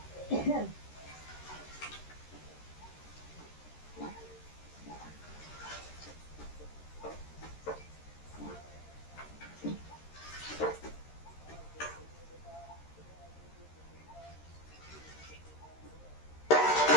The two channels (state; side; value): late; right; 13 ms